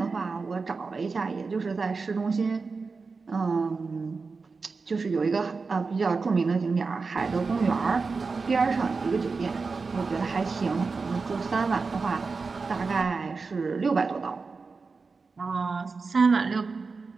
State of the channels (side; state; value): left; quieter; 4.4 dB